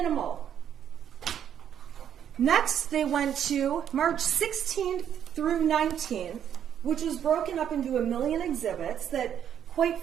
Next, they went to March 16th through 19th, which was broken up into a million exhibits that, quite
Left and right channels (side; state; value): left; quieter; 9.3 dB